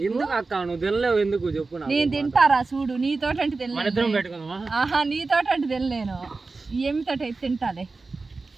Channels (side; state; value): left; quieter; 3.9 dB